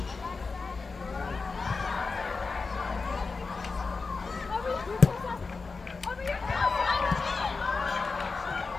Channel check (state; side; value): quieter; right; 4.3 dB